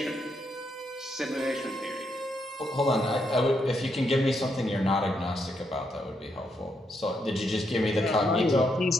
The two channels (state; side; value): normal; both; correlation 0.79